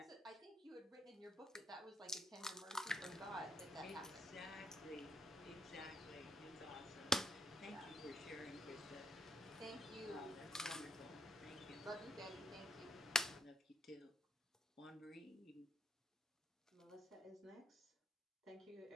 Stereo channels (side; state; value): both; normal; correlation 0.71